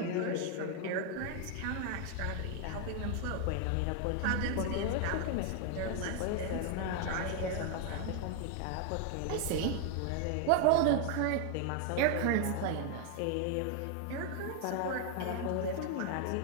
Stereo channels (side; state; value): both; different; correlation 0.00